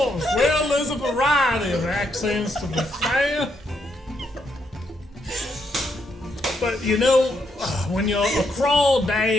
Well, there's a variety of accents to be fair. But you know, when you're a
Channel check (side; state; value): both; normal; correlation 0.77